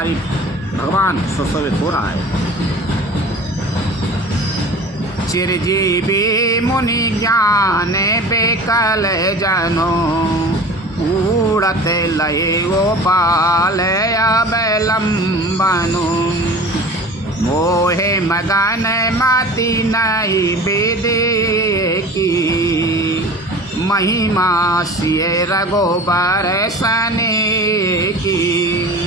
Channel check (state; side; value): normal; both; correlation 0.39